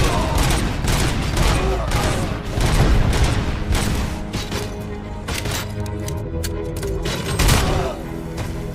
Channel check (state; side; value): identical; both; correlation 1.00